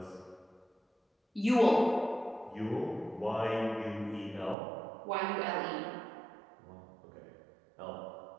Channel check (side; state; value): left; drops out; at 4.5 s